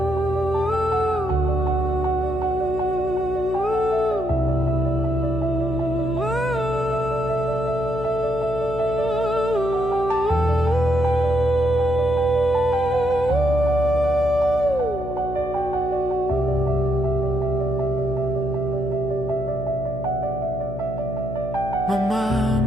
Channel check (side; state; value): left; noise; hum, 9 dB below the sound